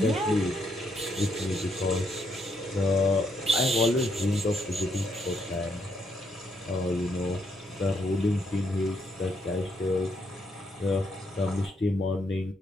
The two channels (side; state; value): both; normal; correlation 0.75